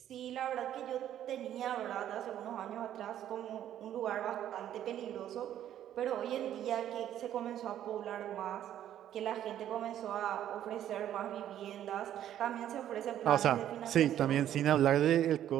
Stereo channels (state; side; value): quieter; left; 11.2 dB